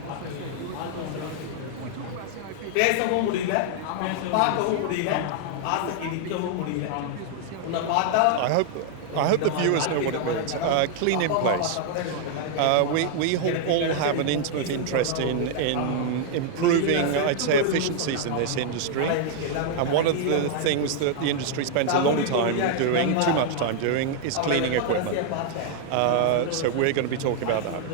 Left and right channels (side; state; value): both; different; correlation 0.00